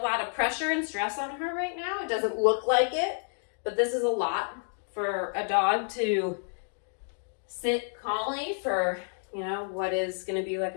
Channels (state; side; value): silent; right; 58 dB below the other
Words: of pressure and stress on her right now. It doesn't look like it, but this is a lot for a dog to sit calmly for, what is going to be like